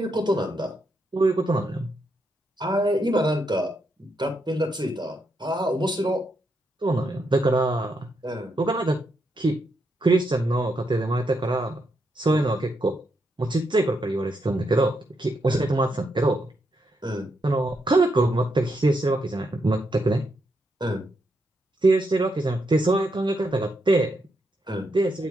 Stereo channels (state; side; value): normal; both; correlation 0.80